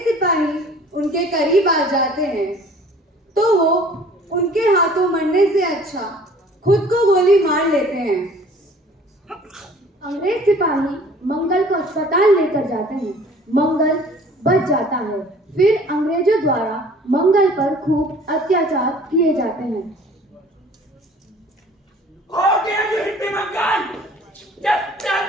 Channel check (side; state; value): both; normal; correlation 0.51